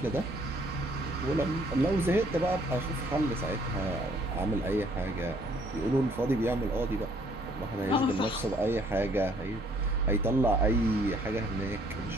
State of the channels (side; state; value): both; normal; correlation 0.63